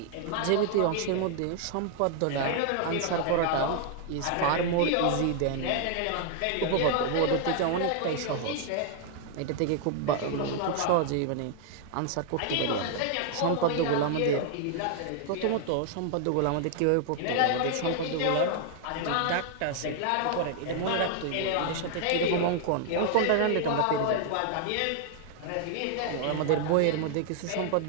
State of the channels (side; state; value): both; different; correlation 0.00